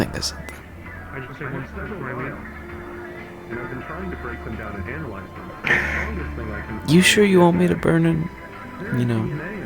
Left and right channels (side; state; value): both; identical; correlation 1.00